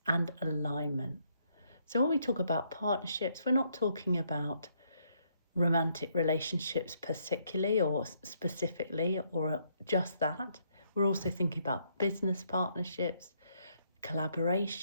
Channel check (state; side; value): inverted; both; correlation -0.72